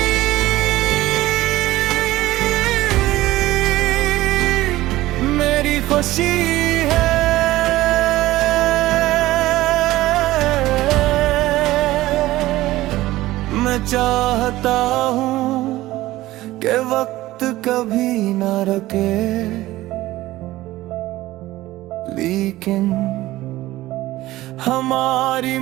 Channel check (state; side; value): quieter; left; 16.8 dB